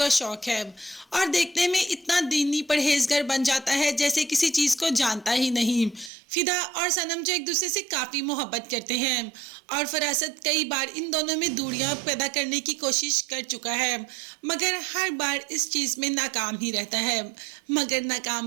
शौक है। और देखने में इतना दीनी परहेजगार बन जाता है जैसे किसी चीज़ को जानता ही नहीं। फिदा और सनम जो एक दूसरे से काफ़ी मोहब्बत करते हैं और फरासत कई बार इन दोनों में दूरियां पैदा करने की कोशिश कर चुका है, मगर हर बार इस चीज़ में नाकाम ही रहता है। मगर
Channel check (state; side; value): drops out; left; at 6.1 s